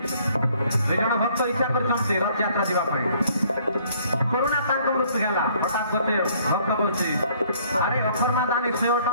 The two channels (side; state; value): both; inverted; correlation -0.61